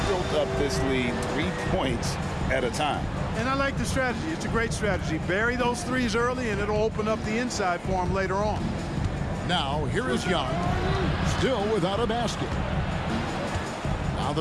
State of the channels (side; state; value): both; identical; correlation 1.00